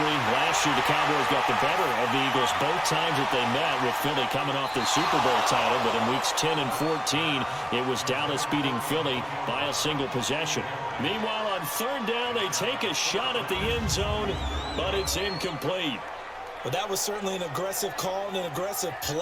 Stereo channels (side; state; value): both; identical; correlation 1.00